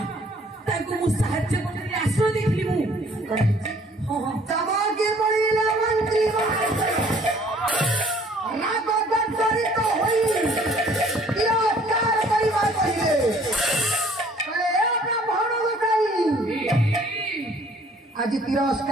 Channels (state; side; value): normal; both; correlation 0.57